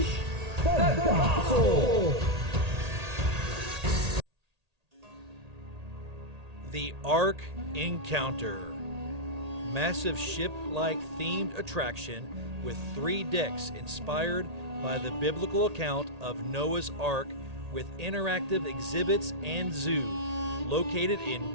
the gospel. The Ark Encounter. Massive ship-like themed attraction with 3 decks inspired by the biblical account of Noah's Ark with interactive exhibits and zoo, located in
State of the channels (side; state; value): left; late; 1.8 ms